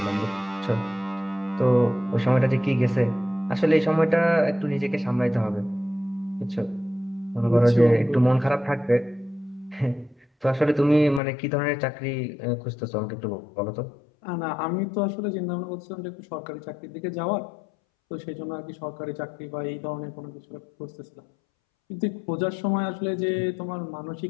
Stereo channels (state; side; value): drops out; right; at 11.2 s